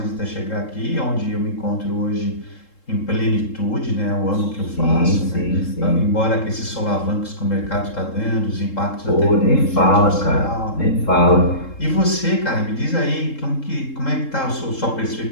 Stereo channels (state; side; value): late; right; 3.7 ms